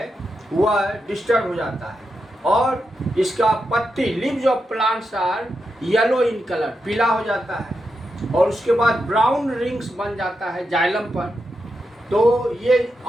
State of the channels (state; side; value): normal; both; correlation 0.86